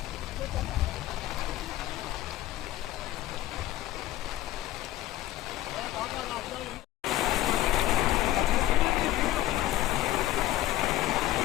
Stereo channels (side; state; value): right; quieter; 14.5 dB